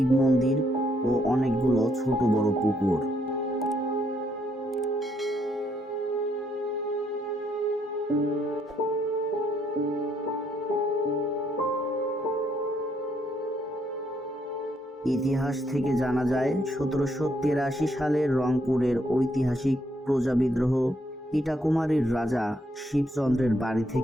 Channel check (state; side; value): normal; both; correlation 0.73